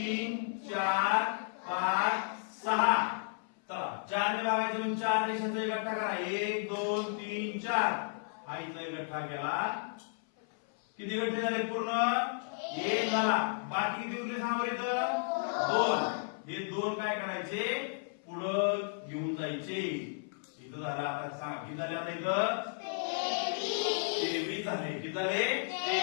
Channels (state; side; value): silent; right; 55 dB below the other